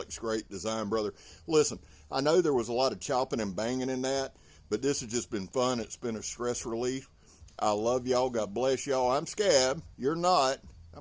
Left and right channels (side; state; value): both; identical; correlation 1.00